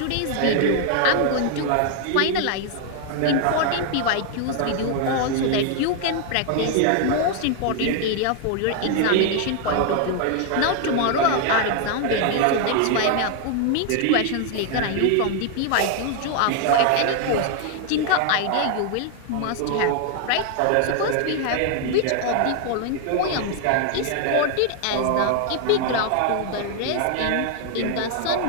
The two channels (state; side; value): different; both; correlation 0.00